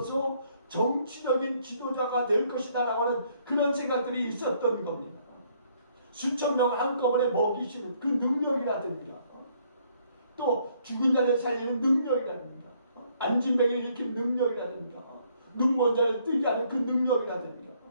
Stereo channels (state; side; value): inverted; both; correlation -0.67